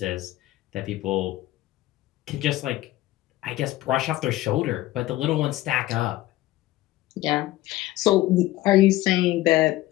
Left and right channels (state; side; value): quieter; right; 16.3 dB